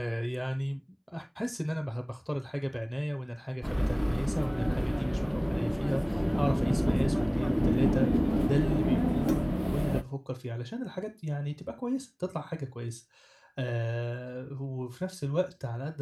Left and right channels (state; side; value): identical; both; correlation 1.00